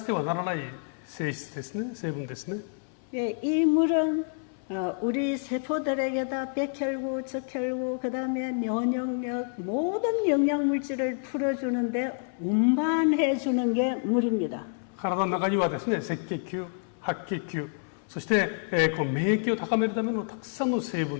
てはならない性質ですね、成分ですね。 예, 이 물은 우리 세포들에게다 백혈구, 적혈구, 그 다음에 면역력, 모든 영양물질을 풀어주는데 운반해 주는 게 물입니다. 体の中にはですね、赤血球、白血球、そして、この免疫を高めるためのたくさんの成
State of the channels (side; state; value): right; silent; 59 dB below the other